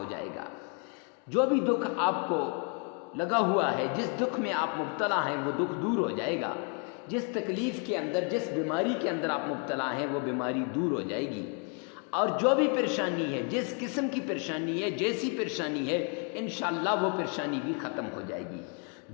جائے گا۔ جو بھی دکھ آپ کو لگا ہوا ہے، جس دکھ میں آپ مبتلا ہیں، وہ دکھ دور ہو جائے گا۔ جس تکلیف کے اندر، جس بیماری کے اندر آپ مبتلا ہیں، وہ بیماری دور ہو جائے گی۔ اور جو بھی پریشانی ہے، جس قسم کی پریشانی ہے، جیسی پریشانی ہے، انشاءاللہ وہ پریشانی بھی ختم ہو جائے گی،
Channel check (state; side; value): quieter; right; 39.1 dB